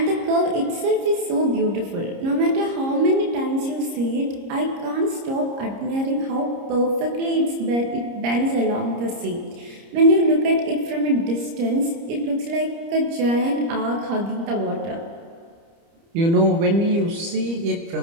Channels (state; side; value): late; left; 30 ms